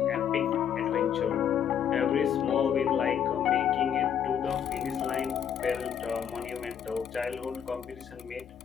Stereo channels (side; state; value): right; quieter; 8.7 dB